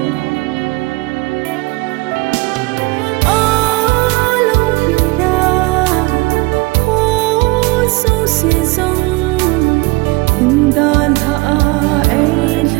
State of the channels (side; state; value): left; quieter; 23.8 dB